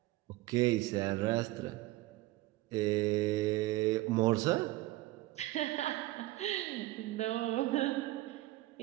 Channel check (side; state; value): left; quieter; 17.9 dB